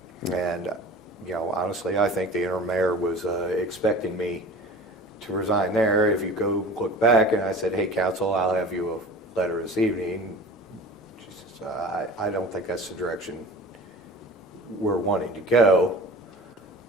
And, honestly, I think the interim mayor was expecting me to resign there. If you go look back, and I said, hey, council, I'll have you a letter this evening. She says, I don't think that's the direction we're wanting to go.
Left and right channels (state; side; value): normal; both; correlation 0.40